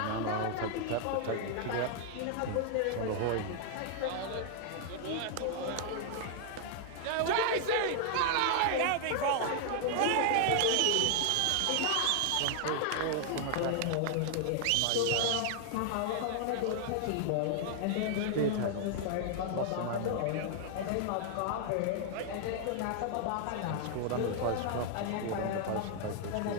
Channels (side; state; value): both; different; correlation 0.00